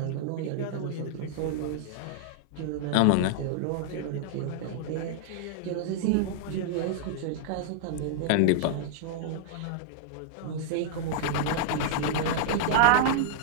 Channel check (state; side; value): different; both; correlation -0.01